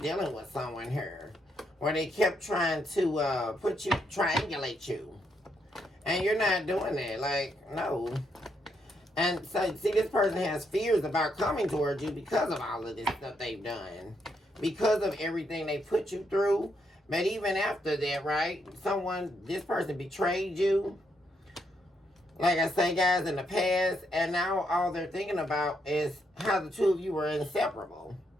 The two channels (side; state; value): both; normal; correlation 0.77